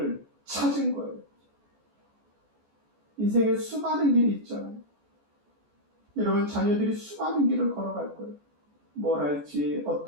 찾은 거예요. 인생에 수많은 길이 있잖아요. 여러분 자녀들이 수많은 길을 걸어갈 거예요. 뭘 할지,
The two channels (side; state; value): left; late; 14 ms